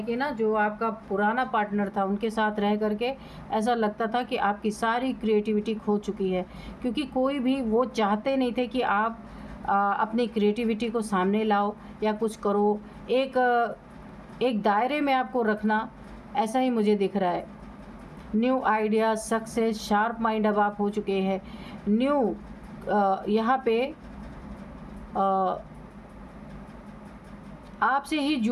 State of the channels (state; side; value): identical; both; correlation 1.00